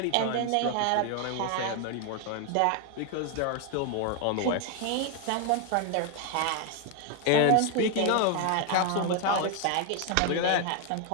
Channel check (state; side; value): different; both; correlation 0.01